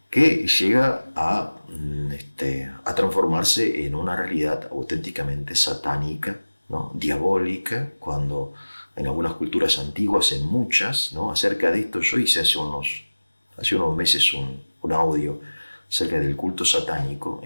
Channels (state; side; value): inverted; both; correlation -1.00